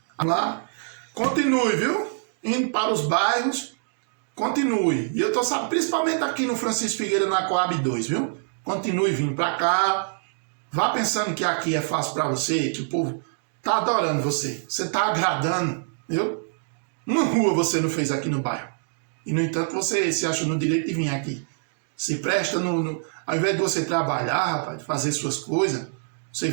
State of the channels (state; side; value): silent; left; digital silence